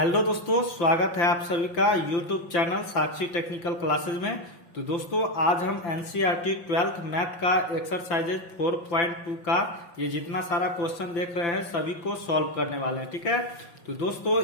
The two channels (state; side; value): late; right; 5.9 ms